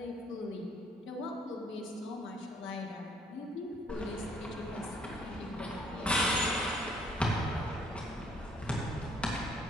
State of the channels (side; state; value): both; normal; correlation 0.63